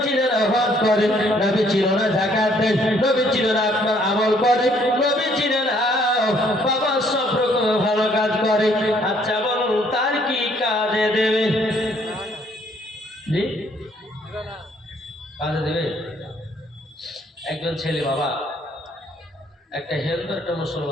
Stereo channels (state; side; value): normal; both; correlation 0.65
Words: চিনে না হজ করে, নবী চিনে না যাকাত দেয়, নবী চিনে না আপনার আমল করে, নবী চিনে না বাবা সব রকম ভালো কাজ করে। আচ্ছা বলুন, তার কি কাজে দেবে? জি কাজে দেবে? একজন ছেলে বাবা, একটা হিন্দু একটা